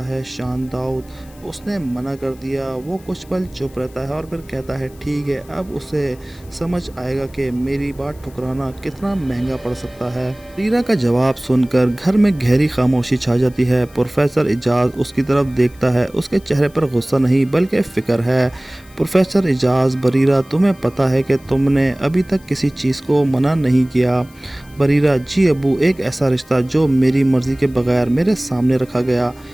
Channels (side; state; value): left; noise; hiss, 27 dB below the sound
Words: ہے۔ شان داؤد، اس نے منع کر دیا۔ وہ کچھ پل چپ رہتا ہے اور پھر کہتا ہے، ٹھیک ہے، اب اسے سمجھ آئے گا کہ میری بات ٹھکرانا کتنا مہنگا پڑ سکتا ہے۔ بریرہ کا جواب سن کر گھر میں گہری خاموشی چھا جاتی ہے۔ پروفیسر اعجاز اس کی طرف دیکھتا ہے۔ اس کے چہرے پر غصہ نہیں بلکہ فکر ہے۔ پروفیسر اعجاز، بریرہ، تمہیں پتہ ہے کہ تم نے ابھی تک کسی چیز کو منع نہیں کیا۔ بریرہ، جی ابو، ایک ایسا رشتہ جو میری مرضی کے بغیر میرے سامنے رکھا گیا۔